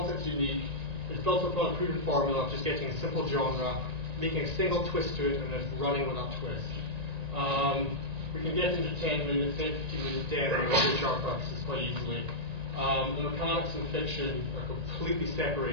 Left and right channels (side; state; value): left; late; 1.9 ms